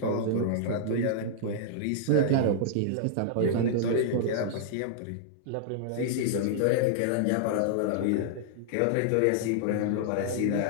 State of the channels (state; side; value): different; both; correlation -0.01